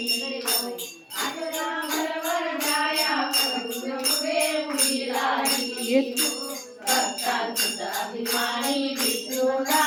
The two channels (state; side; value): identical; both; correlation 1.00